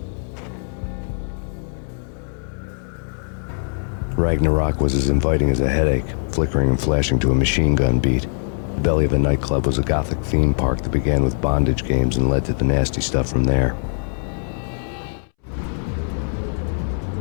Ragnarock was as inviting as a headache, flickering and flashing to a machine gun beat. The belly of a nightclub was a gothic theme park that began with bondage games and led to the nasty stuff from there.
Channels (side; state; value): right; silent; 65 dB below the other